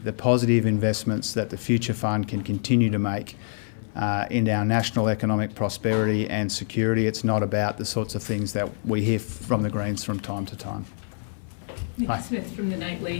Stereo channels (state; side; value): silent; right; 57 dB below the other